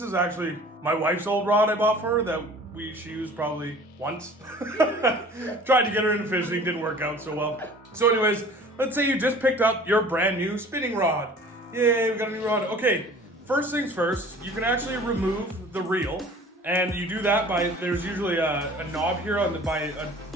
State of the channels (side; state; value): both; normal; correlation 0.46